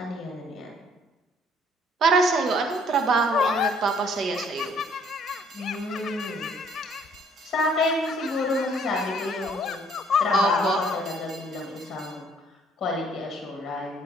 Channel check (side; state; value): both; normal; correlation 0.61